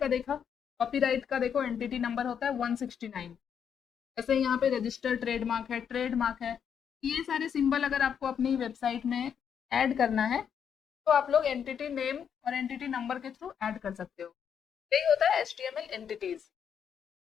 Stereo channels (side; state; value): right; quieter; 7.9 dB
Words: देखा, कॉपीराइट का देखो एंटिटी नंबर होता है 169। जैसे यहाँ पे रजिस्टर ट्रेडमार्क है, ट्रेडमार्क है। ये सारे सिंबल अगर आपको अपनी वेबसाइट में ऐड करना है तो आप लोग एंटिटी नेम और एंटिटी नंबर के थ्रू ऐड कर सकते हो। यही होता है HTML एंटिटीज।